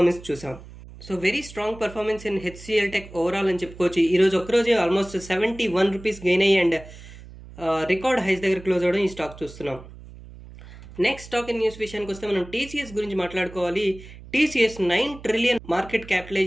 చూసాం. So very strong performance in HCl tech overall అని చెప్పుకోవచ్చు. ఈరోజు ఒక్కరోజే ఆల్మోస్ట్ 71 రూపీస్ గెయిన్ అయ్యి అండ్ రికార్డ్ హైస్ దగ్గర క్లోజ్ అవ్వడం ఈ స్టాక్ చూస్తున్నాం. నెక్స్ట్ స్టాక్ ఇన్ న్యూస్ విషయానికి వస్తే మనం టీసీఎస్ గురించి మాట్లాడుకోవాలి. టీసీఎస్ 9 ట్రిలియన్ మార్కెట్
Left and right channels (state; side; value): noise; right; hum, 17 dB below the sound